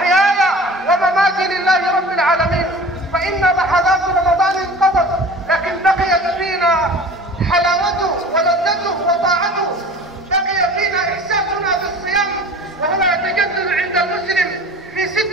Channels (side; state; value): both; normal; correlation 0.41